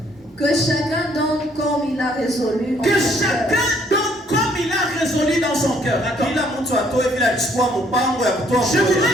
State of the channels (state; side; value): normal; both; correlation 0.65